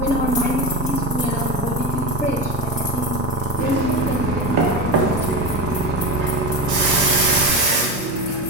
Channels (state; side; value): normal; both; correlation 0.21